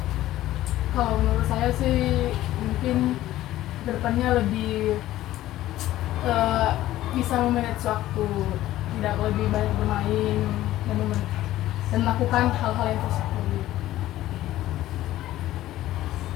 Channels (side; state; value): right; quieter; 14.7 dB